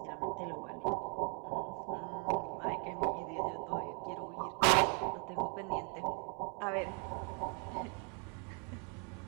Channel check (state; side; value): quieter; left; 38.0 dB